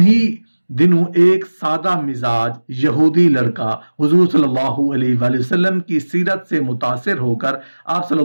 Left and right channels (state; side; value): inverted; both; correlation -1.00